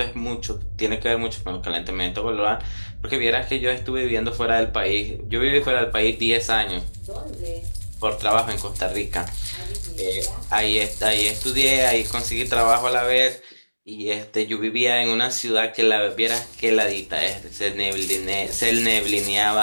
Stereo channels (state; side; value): inverted; both; correlation -1.00